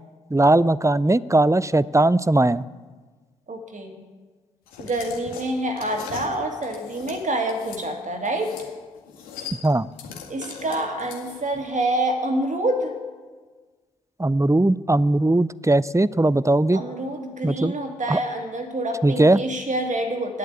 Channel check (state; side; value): normal; both; correlation 0.79